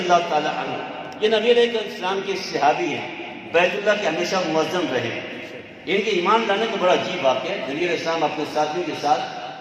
تعالی عنہ، یہ نبی علیہ السلام کے صحابی ہیں، بیت اللہ کے ہمیشہ معظم رہے، ان کے ایمان لانے کا بڑا عجیب واقعہ ہے۔ نبی علیہ السلام اپنے ساتھیوں کے ساتھ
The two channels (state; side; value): identical; both; correlation 1.00